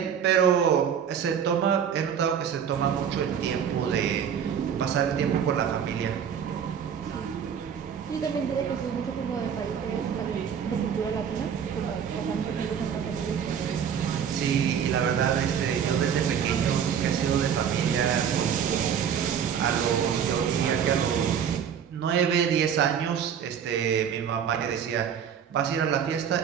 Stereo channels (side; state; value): left; quieter; 8.1 dB